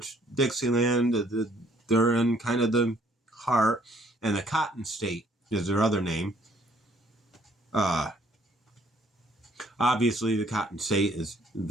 Dixieland, they're in kind of the heart, and the Cotton State is their other name. Obviously, the Cotton State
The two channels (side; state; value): both; normal; correlation 0.63